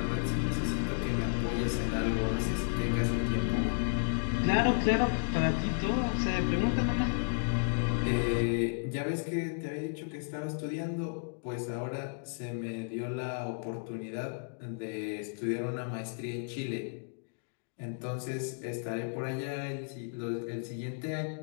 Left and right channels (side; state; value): right; silent; digital silence